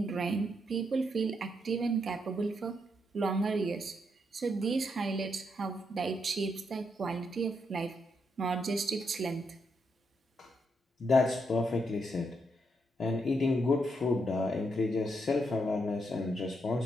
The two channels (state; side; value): normal; both; correlation 0.79